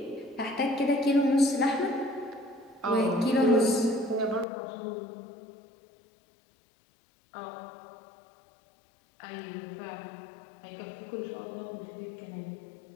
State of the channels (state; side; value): drops out; right; at 4.5 s